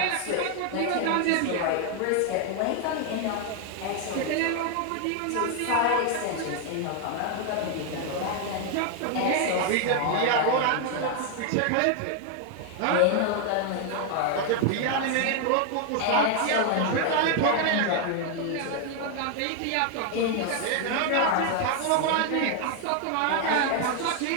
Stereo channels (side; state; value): both; different; correlation 0.00